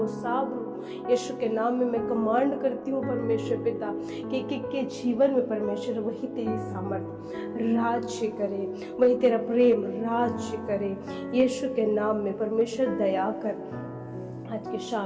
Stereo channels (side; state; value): both; identical; correlation 1.00